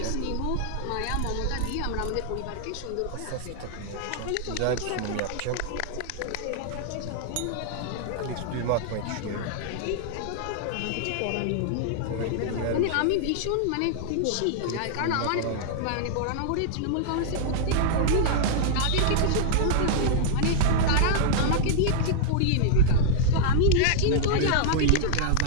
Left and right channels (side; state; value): both; different; correlation -0.01